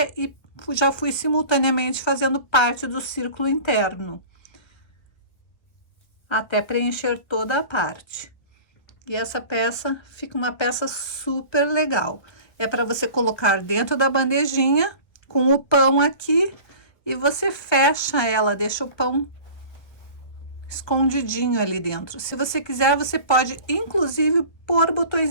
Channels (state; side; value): late; right; 1.3 ms